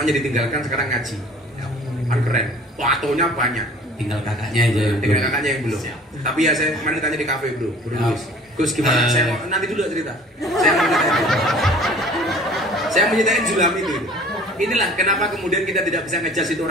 ditinggalkan, sekarang ngaji. Kan keren. Tatonya banyak. Tinggal kakaknya aja yang Tinggal belum. kakaknya yang belum. Siap. Tapi ya saya kemarin tanya di kafe bro. Siap. Gus gimana? Saya mau nanti dulu cerita. Saya mau nyetain Zulham itu. Inilah kenapa kemudian kita tidak bisa ngejudge itu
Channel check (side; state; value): both; normal; correlation 0.48